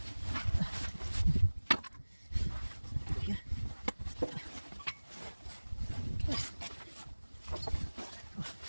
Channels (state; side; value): inverted; both; correlation -1.00